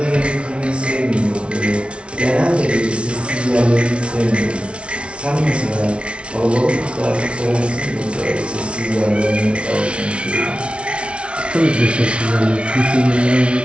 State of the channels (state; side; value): late; left; 0.059 ms